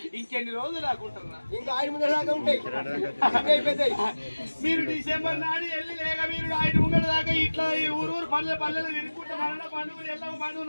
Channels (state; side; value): inverted; both; correlation -1.00